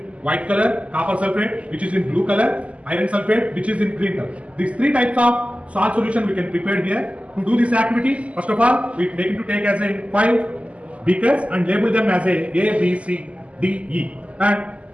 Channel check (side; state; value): left; late; 0.063 ms